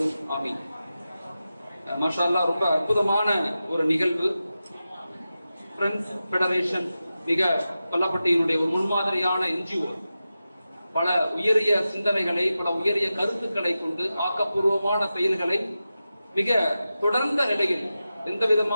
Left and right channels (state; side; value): inverted; both; correlation -0.93